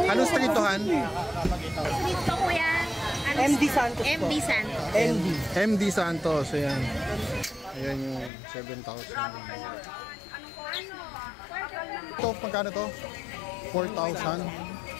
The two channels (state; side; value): drops out; right; at 8.3 s